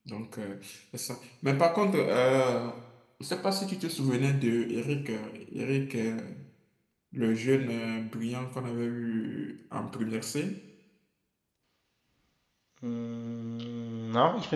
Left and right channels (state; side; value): identical; both; correlation 1.00